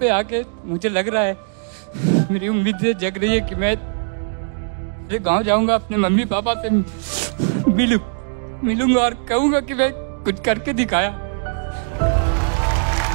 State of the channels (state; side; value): silent; left; digital silence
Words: आके मुझे लग रहा है, मेरी उम्मीदें जग रही है कि मैं गांव जाऊंगा, अपने मम्मी पापा से मिलूंगा और कहूंगा कि मैं कुछ करके दिखाया।